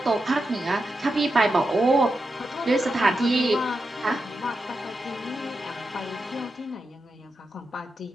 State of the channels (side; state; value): both; normal; correlation 0.88